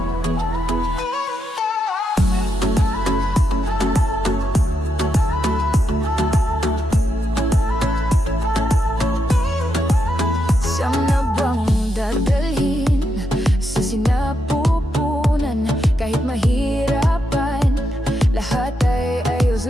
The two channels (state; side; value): normal; both; correlation 0.82